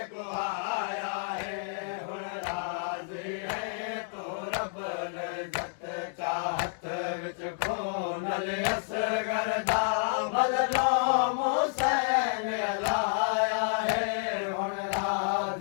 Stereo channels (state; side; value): silent; right; digital silence